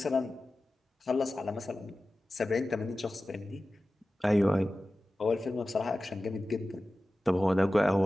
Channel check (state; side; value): normal; both; correlation 0.95